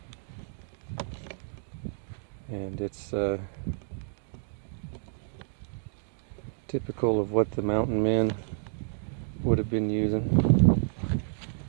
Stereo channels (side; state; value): left; silent; digital silence